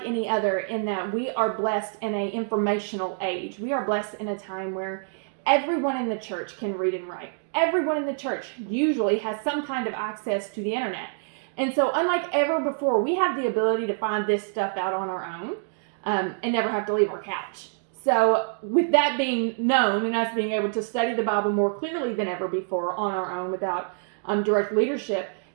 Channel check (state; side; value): silent; left; 61 dB below the other